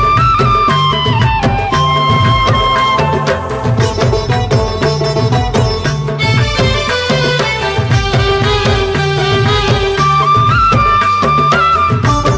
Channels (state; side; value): identical; both; correlation 1.00